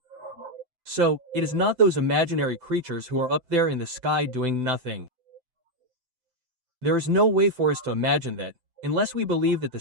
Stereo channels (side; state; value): left; late; 7.9 ms